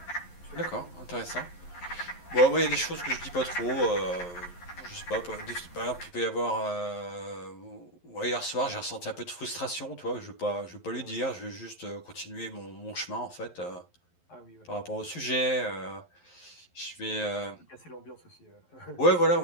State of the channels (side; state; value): right; late; 11 ms